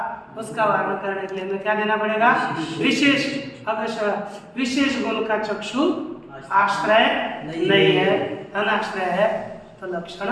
उसका वर्णन करने के लिए हमें क्या देना पड़ेगा, विशेष। अवश्य विशेष गुण का चक्षु आश्रय नहीं है, अनाश्रय है, तो लक्षण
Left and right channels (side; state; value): both; identical; correlation 1.00